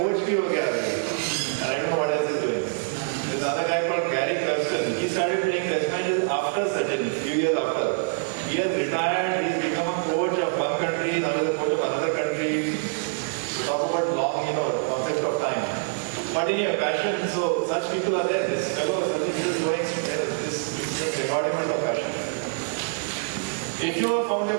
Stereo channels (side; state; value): left; silent; 61 dB below the other